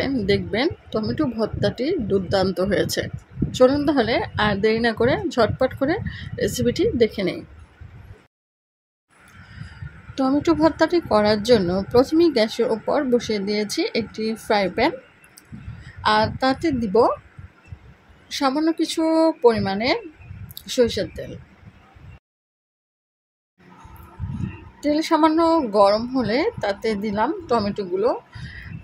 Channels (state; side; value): identical; both; correlation 1.00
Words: দেখবেন টমেটো ভর্তাটি দুর্দান্ত হয়েছে। চলুন তাহলে আর দেরি না করে ঝটপট করে রেসিপিটি দেখে নেই। টমেটো ভর্তাটি করার জন্য প্রথমেই গ্যাসের ওপর বসিয়ে দিয়েছি একটি ফ্রাই প্যান। আর তাতে দিব সামান্য কিছু পরিমাণে সরিষার তেল। তেল সামান্য গরম হলে তাতে দিলাম টমেটোগুলো।